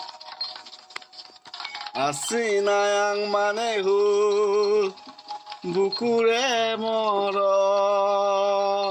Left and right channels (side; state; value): both; identical; correlation 1.00